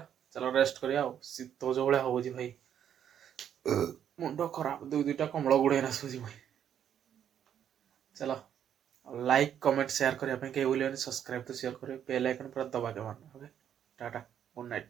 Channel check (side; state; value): left; quieter; 9.4 dB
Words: चलो रेस्ट करिया शीत जो भाया हो भाई मुंड खराब दुईटा कमल गुड़े आसूसी भाई चलो लाइक कमेंट शेयर करने कहीं भूल सब्सक्राइब तो शेयर करें बेल आइकन पूरा दबा के मारना ओके टाटा गुड